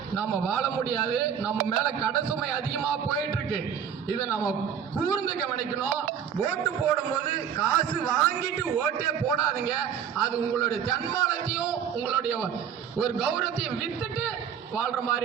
நாம வாழ முடியாது. நம்ம மேல கடன் சுமை அதிகமா போயிட்டு இருக்கு. இதை நம்ம கூர்ந்து கவனிக்கணும். ஓட்டு போடும்போது காசு வாங்கிட்டு ஓட்டே போடாதீங்க. அது உங்களுடைய தன்மானத்தையும் உங்களுடைய ஒரு கௌரவத்தையும் வித்துட்டு வாழ்ற மாதிரி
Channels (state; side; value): quieter; left; 8.2 dB